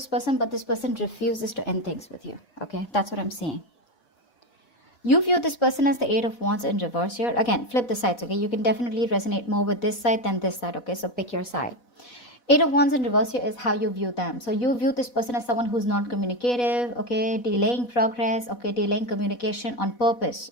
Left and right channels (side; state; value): right; late; 4.1 ms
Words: person, but this person refuses to end things with you, okay? That's what I'm saying. You view this person as the Eight of Wands in reverse here. Again, flip the sides, okay? You can definitely resonate more with this side than this side, okay? So pick your side. Eight of Wands in reverse here is how you view them. So you view this person as someone who's not communicative, okay? Delaying progress, okay? Delaying communication on purpose,